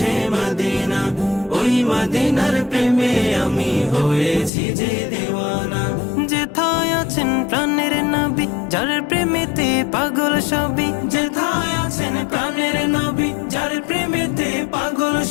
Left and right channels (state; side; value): drops out; right; at 4.5 s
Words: মদিনা, ওই মদিনার প্রেমে আমি হয়েছি যে দিওয়ানা। যেথায় আছেন প্রাণের নবী, যার প্রেমেতে পাগল সবই। যেথায় আছেন প্রাণের নবী, যার প্রেমেতে পাগল